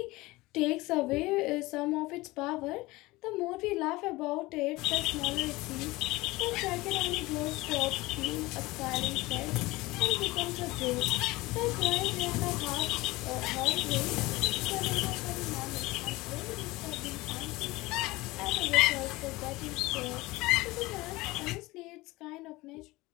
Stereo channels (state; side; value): quieter; right; 20.8 dB